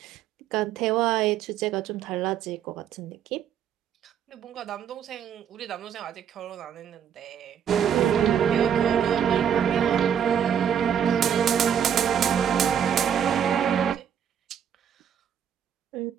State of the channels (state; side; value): quieter; left; 8.6 dB